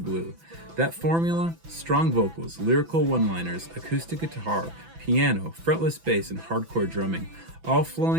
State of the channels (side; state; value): left; late; 6.0 ms